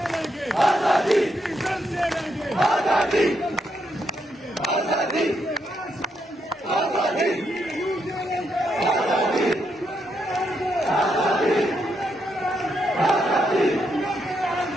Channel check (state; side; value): normal; both; correlation 0.79